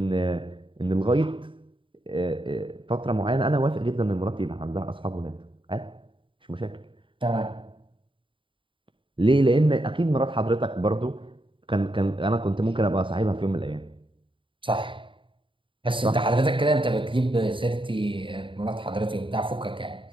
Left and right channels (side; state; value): left; late; 0.25 ms